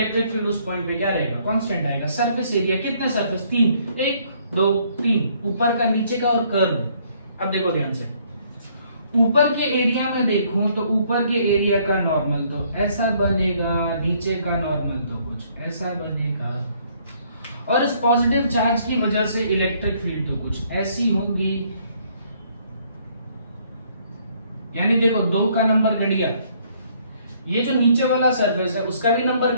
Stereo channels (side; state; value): both; inverted; correlation -0.65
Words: फील्ड उस पॉइंट पे क्या रहेगा, कांस्टेंट आएगा। सरफेस एरिया कितने सरफेस, 3, 1 2 3, ऊपर का नीचे का और कर्व। अब देखो ध्यान से, ऊपर के एरिया में देखूं तो ऊपर के एरिया का नॉर्मल तो ऐसा बनेगा, नीचे का नॉर्मल तो कुछ ऐसा बनेगा, और इस पॉजिटिव चार्ज की वजह से इलेक्ट्रिक फील्ड तो कुछ ऐसी होंगी। यानी देखो 2 का नंबर घट गया, ये जो नीचे वाला सरफेस है उसका भी नंबर